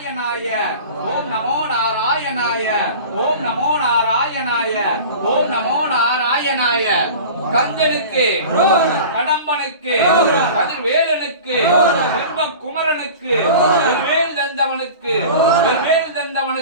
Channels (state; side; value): inverted; both; correlation -0.37